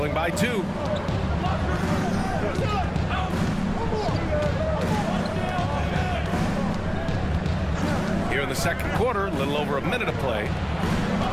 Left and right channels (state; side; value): identical; both; correlation 1.00